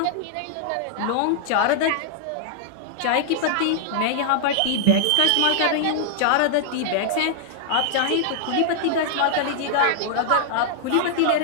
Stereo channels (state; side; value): different; both; correlation -0.01